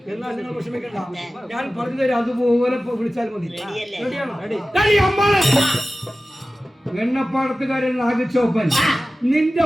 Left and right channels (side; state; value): both; normal; correlation 0.95